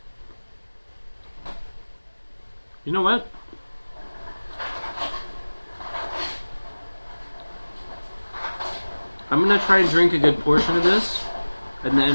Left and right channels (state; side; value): inverted; both; correlation -1.00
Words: You know what? I'm gonna try and drink a good portion of this, and